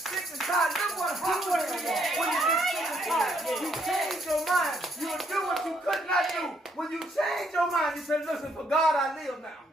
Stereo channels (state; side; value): normal; both; correlation 0.71